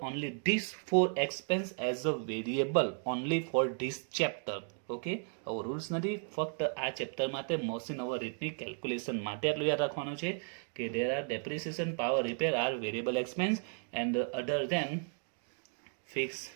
only this 4 expense as a variable only for this chapter. Okay, આવો રૂલ્સ નથી, ફક્ત આ ચેપ્ટર માટે મશીન ઓવર રેટની કેલ્ક્યુલેશન માટે આટલું યાદ રાખવાનું છે કે there are depreciation, power repair are variable expense and other than fix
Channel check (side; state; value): left; silent; 55 dB below the other